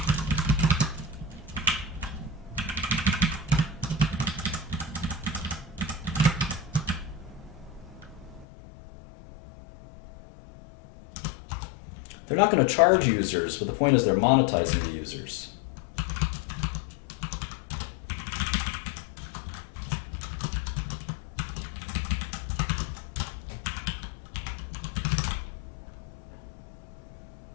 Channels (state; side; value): drops out; right; at 8.5 s